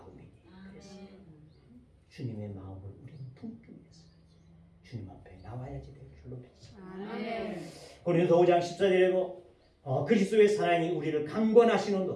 그래서 주님의 마음을 우리는 품기 위해서 주님 앞에 나와야지 될 줄로 믿습니다. 아멘. 고린도서 5장 14절에 그리스도의 사랑이 우리를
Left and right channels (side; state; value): both; identical; correlation 1.00